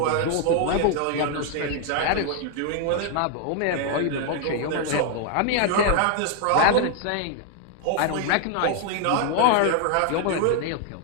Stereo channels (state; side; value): different; both; correlation 0.00